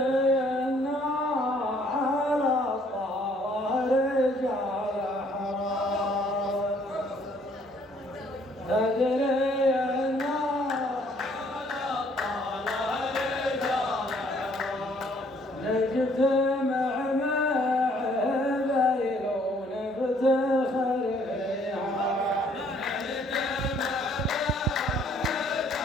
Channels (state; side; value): normal; both; correlation 0.63